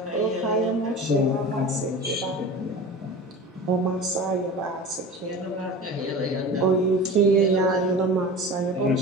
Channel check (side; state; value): both; normal; correlation 0.34